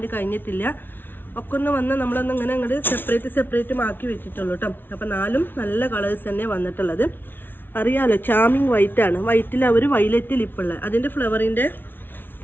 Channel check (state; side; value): late; right; 0.10 ms